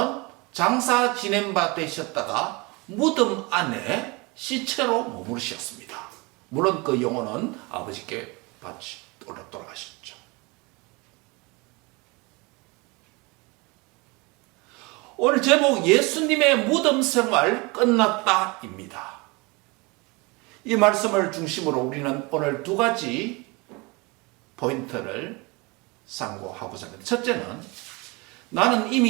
장사 지낸 바 되셨다가 무덤 안에 시체로 머무르셨습니다. 물론 그 영혼은 아버지께 돌아가셨죠. 오늘 제목 예수님의 무덤 생활 끝났다입니다. 이 말씀을 중심으로 우리는 오늘 두 가지 포인트를 상고하고자 합니다. 첫째는 나는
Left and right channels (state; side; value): quieter; left; 26.5 dB